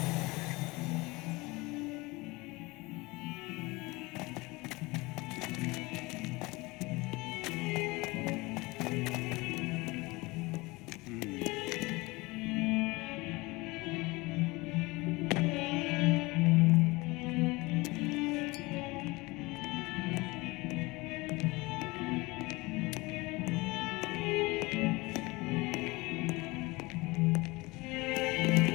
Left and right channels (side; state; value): right; quieter; 23.3 dB